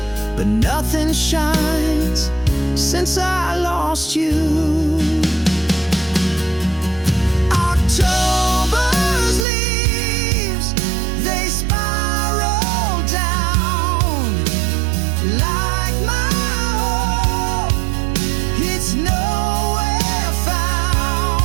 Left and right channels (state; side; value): drops out; left; at 9.5 s